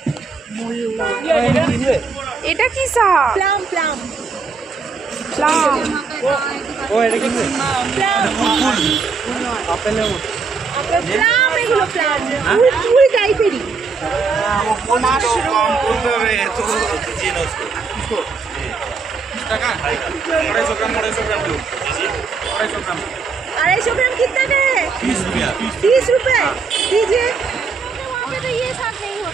এটা কি শাক? প্লাম। ও এটা কি? আপেলের মতো। প্লাম, এগুলো প্লাম। ফুল টাইপেরই। টাকা 250 গ্রাম 250 ग्राम कितना का है? 30 रुपये दीजिए। वहाँ पे तो ये साग नहीं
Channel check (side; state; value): left; quieter; 4.9 dB